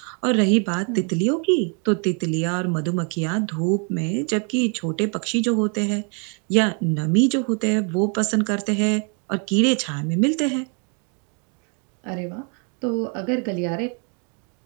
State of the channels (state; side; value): quieter; left; 38.9 dB